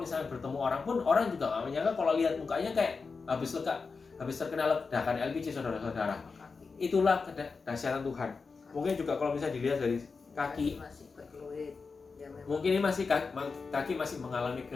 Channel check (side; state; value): right; quieter; 4.7 dB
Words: bertemu orang pun, orang juga nggak menyangka kalau lihat mukanya kayak habis terkena ledakan LPG saudara-saudara. Itulah kedahsyatan Tuhan. Mungkin juga kalau misalnya dilihat dari kaki, mungkin ini masih kaki masih mengalami